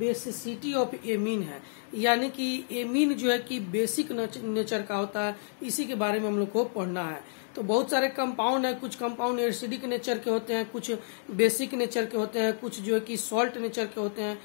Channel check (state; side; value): silent; right; digital silence